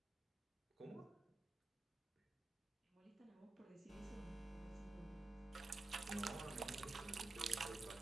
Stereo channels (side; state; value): left; quieter; 3.1 dB